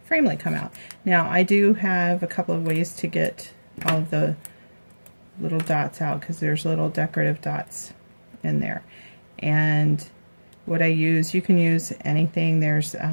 framelit come out. Now, I do have a couple of ways to get all of the little dots out because there's little decorative dots in there. And what I use, you can use anything. There's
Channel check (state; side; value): inverted; both; correlation -1.00